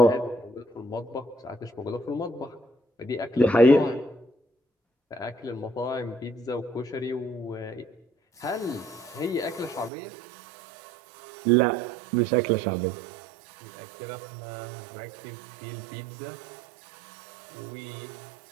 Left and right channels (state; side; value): drops out; left; at 9.9 s